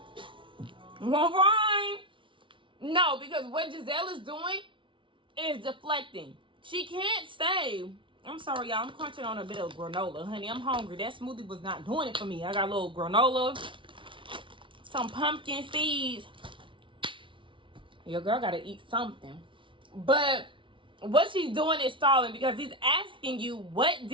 All right. No, because what Giselle is doing is deflecting. She can't say, I'm sorry, y'all, I'm crunching on a bit of granola. Honey, I'm hungry. That smoothie was not doing it for me. I got a little granola, some pumpkin seeds. Your girl got to eat something. But what she's doing is stalling because he's asking you, what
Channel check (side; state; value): left; late; 0.25 ms